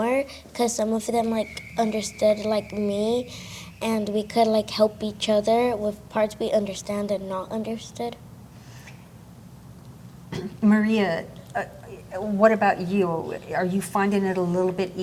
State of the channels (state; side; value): identical; both; correlation 1.00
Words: because some of them understood me, and we could help each other with parts we understand and not understood. Maria, what about you? Are you finding it a little bit